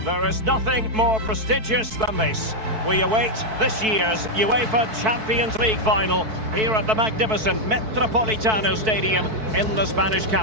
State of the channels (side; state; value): left; late; 4.6 ms